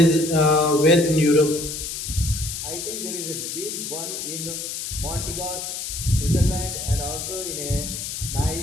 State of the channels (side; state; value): left; noise; hiss, 6 dB below the sound